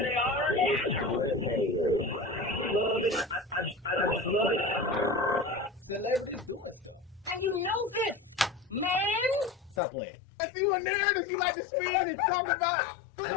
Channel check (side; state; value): right; drops out; at 9.8 s